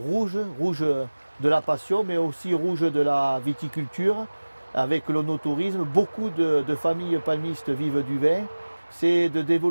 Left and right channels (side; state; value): both; inverted; correlation -1.00